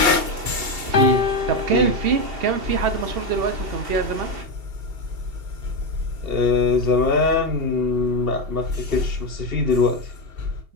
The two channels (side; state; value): left; late; 2.7 ms